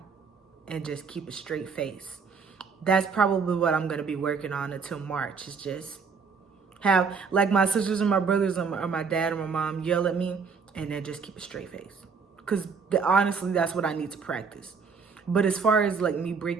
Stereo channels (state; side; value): quieter; left; 5.4 dB